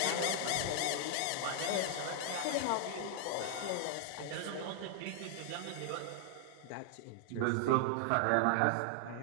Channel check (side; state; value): both; different; correlation 0.00